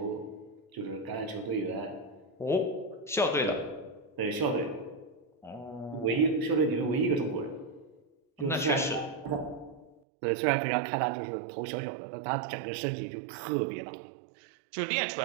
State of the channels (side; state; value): left; drops out; at 10.0 s